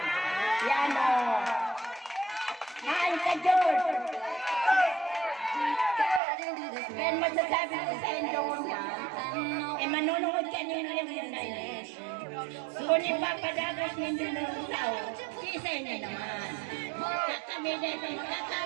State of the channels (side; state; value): left; drops out; at 6.2 s